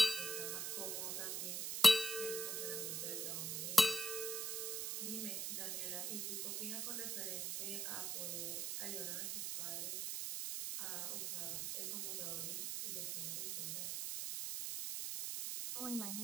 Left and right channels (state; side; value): noise; right; hiss, 1 dB below the sound